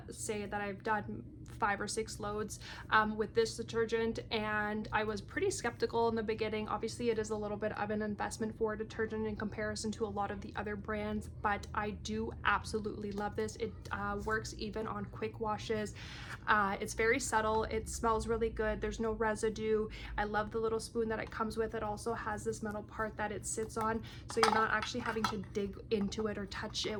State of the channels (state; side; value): identical; both; correlation 1.00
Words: say that I've done 5 or 6 loads with this detergent, and I was pretty skeptical in the beginning. Obviously it is a little bit of an investment for a detergent in comparison to a lot of the other brands, but I do absolutely love this. It works even on quick washes. It's very subtle, it smells really good, there's no residue. I love the little spoon that it comes with. It also has this metal part that it sits on, so you're not actually having to dig into it or touch it